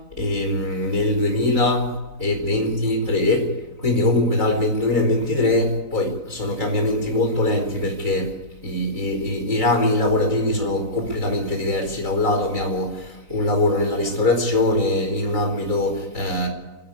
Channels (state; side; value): late; left; 3.9 ms